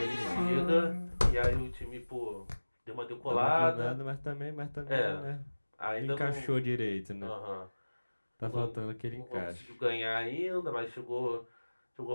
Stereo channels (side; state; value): both; inverted; correlation -1.00